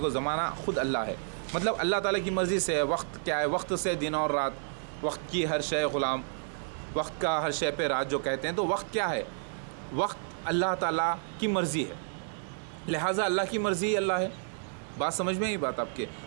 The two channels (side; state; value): left; silent; digital silence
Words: ज़माना ख़ुद अल्लाह है। मतलब अल्लाह ताला की मर्ज़ी से है। वक्त क्या है? वक्त से दिन और रात, वक्त की हर शय ग़ुलाम, वक्त का हर शय पे राज जो कहते हैं, तो वक्त क्या है? वक्त अल्लाह ताला की मर्ज़ी है, लिहाजा अल्लाह की मर्ज़ी ही अल्लाह है। बात समझ में आई बात आपके?